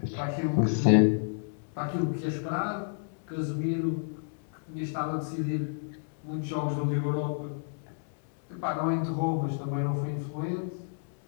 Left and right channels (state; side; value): silent; right; digital silence